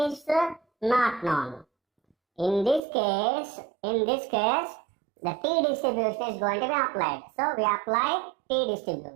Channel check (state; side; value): drops out; left; at 2.8 s